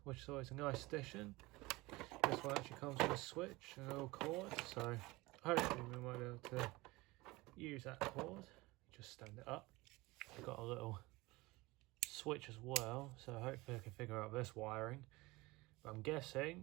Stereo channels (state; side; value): quieter; left; 21.7 dB